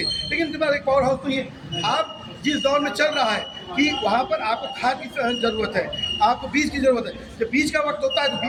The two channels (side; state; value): both; identical; correlation 1.00